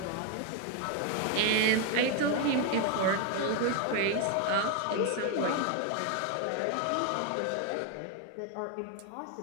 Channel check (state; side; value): different; both; correlation 0.01